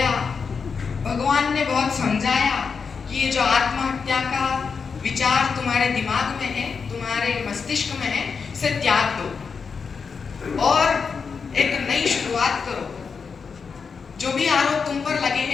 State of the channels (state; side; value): quieter; right; 5.6 dB